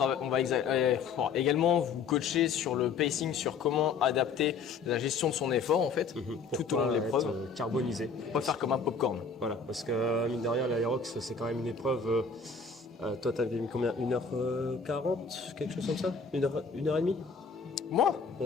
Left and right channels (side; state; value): right; quieter; 5.2 dB